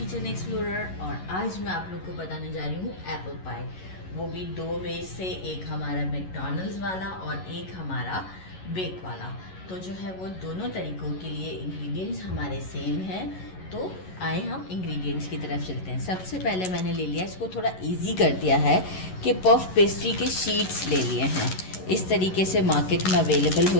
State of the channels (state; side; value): late; right; 11 ms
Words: एक्सप्लोरर। और आज मैं आप लोग को बताने जा रही हूँ एप्पल पाई, वो भी दो वेज से, एक हमारा मैकडॉनल्ड्स वाला और एक हमारा बेक वाला। तो जो है वो दोनों तरीक़ों के लिए इंग्रेडिएंट्स हमारे सेम हैं। तो आए हम इंग्रेडिएंट्स की तरफ चलते हैं। सबसे पहले मैंने ले लिया, इसको थोड़ा इजी कर दिया है कि पफ पेस्ट्री के शीट्स ले लिए हैं। इस तरीके से मार्केट में अवेलेबल